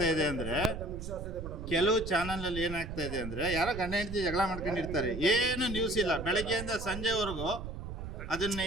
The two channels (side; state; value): right; noise; rumble, 8 dB below the sound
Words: ಇದೆ ಅಂದ್ರೆ, ಕೆಲವು ಚಾನಲ್ ಅಲ್ಲಿ ಏನಾಗ್ತಾ ಇದೆ ಅಂದ್ರೆ, ಯಾರೋ ಗಂಡ ಹೆಂಡತಿ ಜಗಳ ಮಾಡ್ಕೊಂಡಿರ್ತಾರೆ, ಏನು ನ್ಯೂಸ್ ಇಲ್ಲ ಬೆಳಗ್ಗೆಯಿಂದ ಸಂಜೆವರೆಗೂ. ಅದು